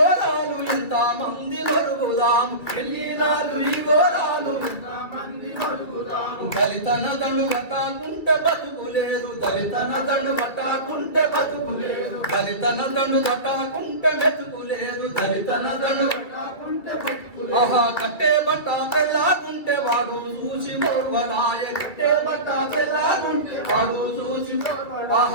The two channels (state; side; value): late; right; 2.5 ms